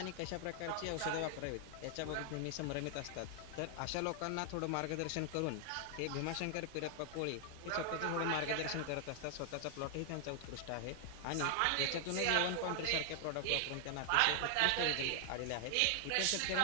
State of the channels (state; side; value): different; both; correlation 0.00